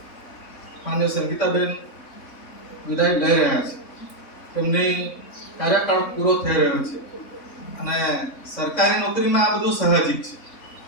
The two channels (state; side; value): late; right; 3.6 ms